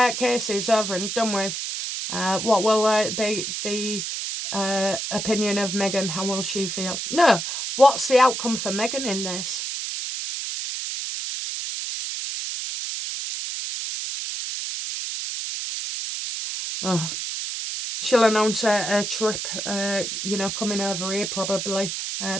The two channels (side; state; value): right; noise; hiss, 4 dB below the sound